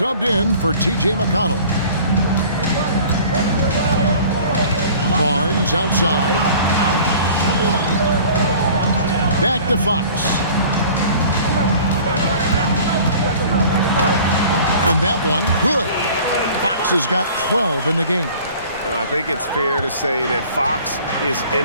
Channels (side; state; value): both; inverted; correlation -0.46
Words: in for TJ McConnell. Barnes outside. Back to Fox. And that one, good. Fox has got 12 in the game. I think it's fair to say that Fox is